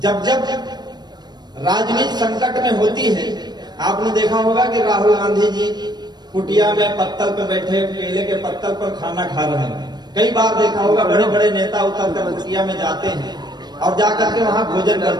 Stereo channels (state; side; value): late; left; 0.20 ms